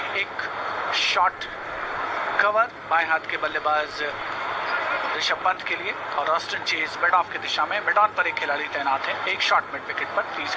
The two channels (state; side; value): identical; both; correlation 1.00